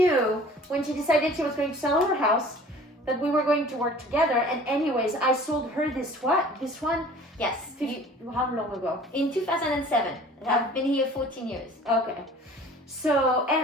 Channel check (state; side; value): normal; both; correlation 0.47